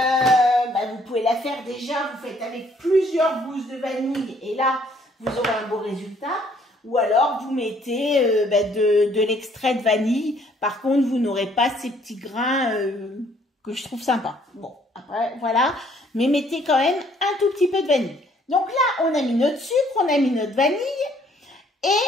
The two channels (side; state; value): both; normal; correlation 0.63